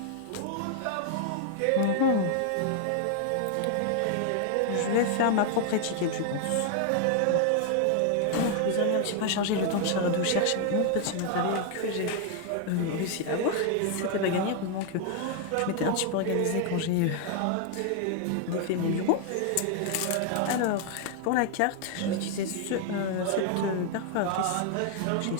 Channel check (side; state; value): both; different; correlation 0.00